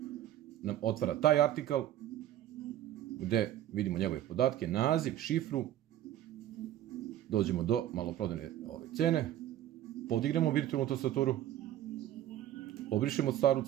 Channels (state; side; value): quieter; left; 12.5 dB